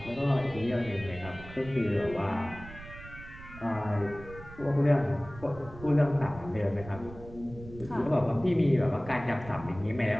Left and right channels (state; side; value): noise; right; rumble, 16 dB below the sound